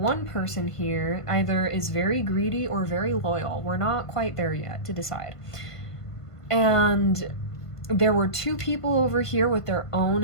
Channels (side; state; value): right; late; 1.5 ms